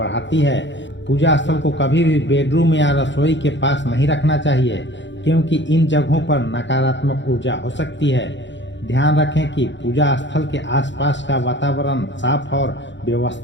है। पूजा स्थल को कभी भी बेडरूम या रसोई के पास नहीं रखना चाहिए क्योंकि इन जगहों पर नकारात्मक ऊर्जा हो सकती है। ध्यान रखें कि पूजा स्थल के आसपास का वातावरण साफ और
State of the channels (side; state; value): right; late; 0.53 ms